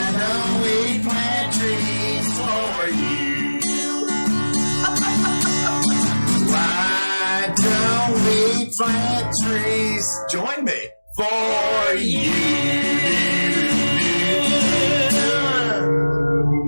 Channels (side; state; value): both; inverted; correlation -1.00